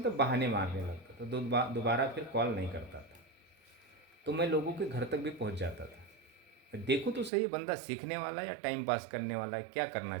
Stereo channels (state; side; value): drops out; left; at 7.3 s